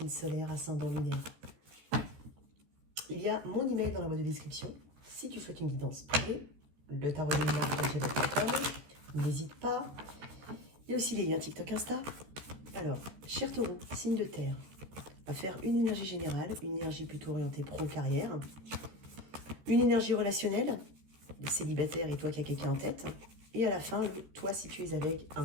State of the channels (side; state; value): left; late; 14 ms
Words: solaire, ascendant lunaire. Il y a mon email dans la boîte de description. Si tu souhaites une guidance privée, le tarot de Mina, n'hésite pas. Il y a aussi les liens TikTok, Insta. Alors, cher Taureau, signe de terre. On va faire une énergie générale, une énergie plutôt orientée pro-carrière, une énergie relationnelle, le célibataire et toi qui as quelqu'un en tête. Et à la fin, toi si tu es avec